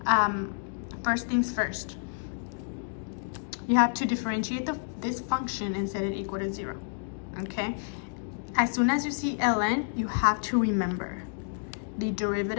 first things first, you have to differentiate this function and set it equal to 0. Okay, as soon as you see ln, you have to remember the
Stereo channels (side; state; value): right; silent; digital silence